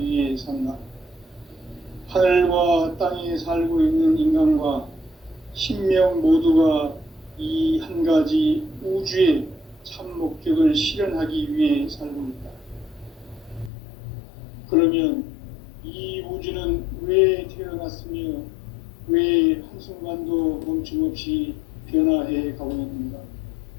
위해 산다. 하늘과 땅에 살고 있는 인간과 신명 모두가 이 한 가지 우주의 참 목적을 실현하기 위해 살고 있다. 그러면 이 우주는 왜 태어났으며 왜 한순간도 멈춤없이 변화해 가고 있는가?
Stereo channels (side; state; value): right; drops out; at 13.7 s